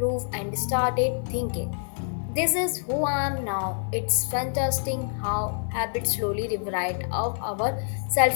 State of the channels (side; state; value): right; silent; digital silence